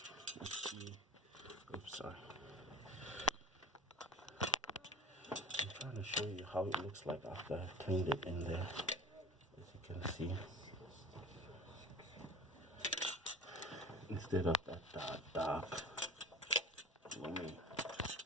Let's see. Oops, sorry. I'm trying to show you how it looks like after I've cleaned it in there. As you can see, instead of that dark gloomy.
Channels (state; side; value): normal; both; correlation 0.39